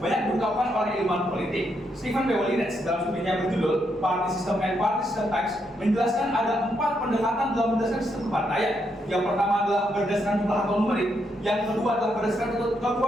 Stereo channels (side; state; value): both; normal; correlation 0.78